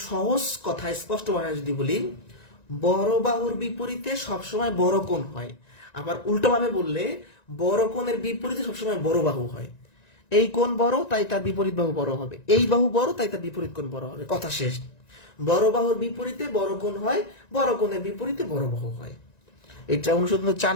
সহজ কথা, স্পষ্ট ভাষায় যদি বলি, বড় বাহুর বিপরীতে সবসময় বড় কোণ হয়। আবার উল্টোভাবে বললে বড় কোণের বিপরীতে সবসময় বড় বাহু হয়। এই কোণ বড় তাই তার বিপরীত বাহু বড় হবে, এই বাহু বড় তাই তার বিপরীত কোণ বড় হবে। কথা শেষ। বড় বাহুর বিপরীতে বড় কোণ হয়, বড় কোণের বিপরীতে বড় বাহু হয়। এটা অনুসন্ধান 4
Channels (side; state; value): right; late; 1.9 ms